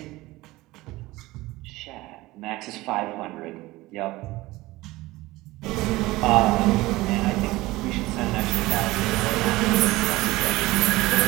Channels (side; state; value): left; quieter; 19.4 dB